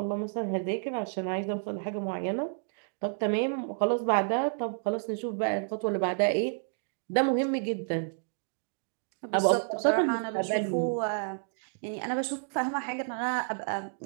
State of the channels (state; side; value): silent; left; digital silence